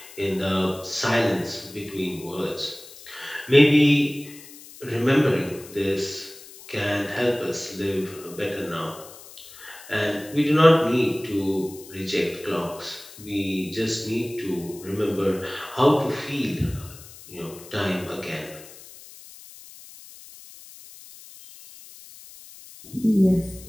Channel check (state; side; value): noise; left; hiss, 18 dB below the sound